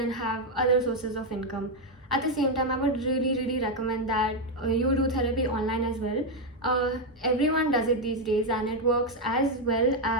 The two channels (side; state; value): both; normal; correlation 0.04